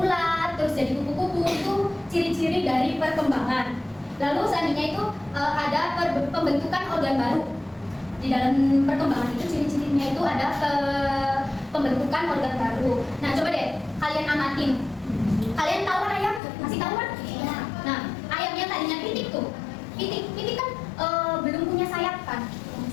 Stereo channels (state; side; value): drops out; right; at 16.4 s